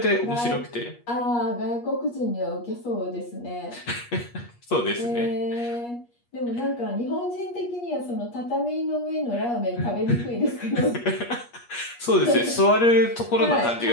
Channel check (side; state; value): right; late; 8.4 ms